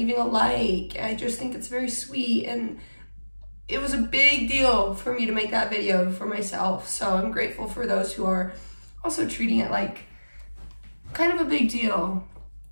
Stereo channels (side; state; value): both; inverted; correlation -1.00